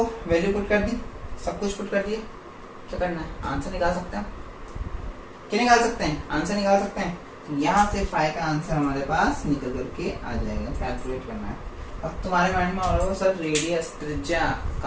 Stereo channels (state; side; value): identical; both; correlation 1.00